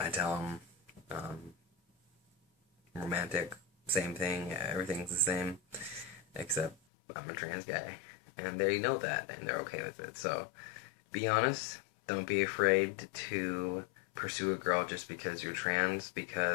tell them. Romantic, same thing. Everything's the same, except I'm a trans guy, and they know that, and they're okay with it. So, be honest. Don't be afraid to pursue a girl just because you're trans,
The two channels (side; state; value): right; drops out; at 6.8 s